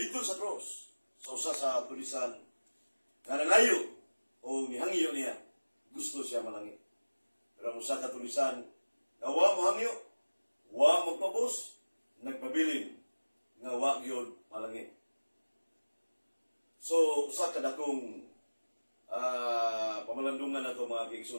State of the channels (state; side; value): inverted; both; correlation -1.00